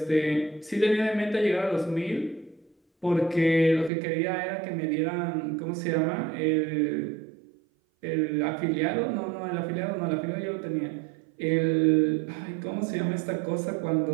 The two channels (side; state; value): left; drops out; at 3.9 s